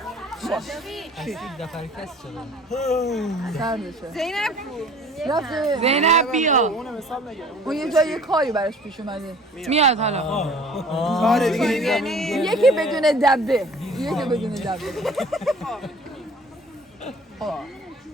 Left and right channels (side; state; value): both; normal; correlation 0.49